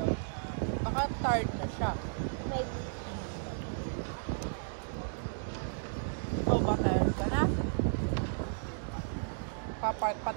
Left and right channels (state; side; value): silent; left; digital silence